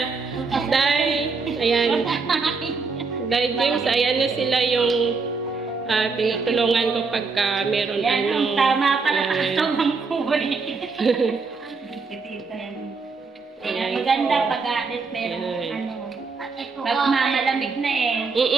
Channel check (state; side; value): quieter; left; 4.5 dB